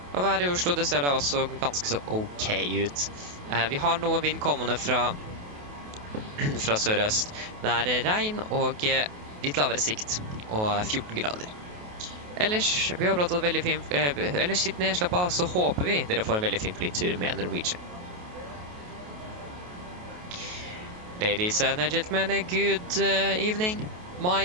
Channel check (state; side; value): late; left; 28 ms